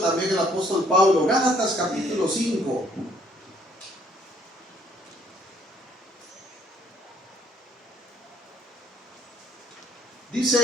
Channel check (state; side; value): normal; both; correlation 0.64